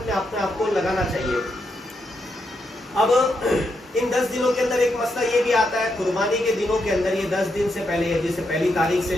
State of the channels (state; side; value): normal; both; correlation 0.82